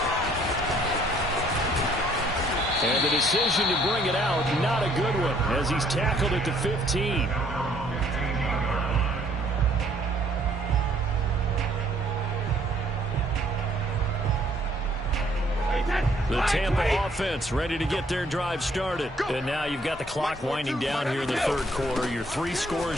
And the decision to bring it out, not a good one, as he's tackled at the 15. The Tampa offense ready to get their drive started. And now you've got the clock winding down here in the 3rd quarter. Your 3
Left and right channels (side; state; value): both; normal; correlation 0.63